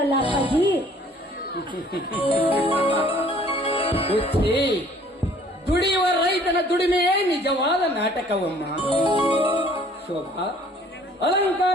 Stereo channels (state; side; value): normal; both; correlation 0.56